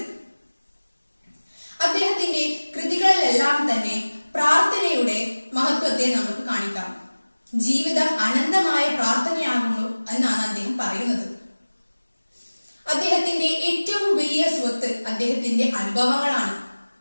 അദ്ദേഹത്തിന്റെ കൃതികളിലെല്ലാം തന്നെ പ്രാർത്ഥനയുടെ മഹത്വത്തെ നമുക്ക് കാണിക്കാം. ജീവിതം അനന്തമായ പ്രാർത്ഥനയാകുന്നു എന്നാണ് അദ്ദേഹം പറയുന്നത്. അദ്ദേഹത്തിന്റെ ഏറ്റവും വലിയ സ്വത്ത് അദ്ദേഹത്തിന്റെ അനുഭവങ്ങളാണ്.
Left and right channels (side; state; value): both; inverted; correlation -1.00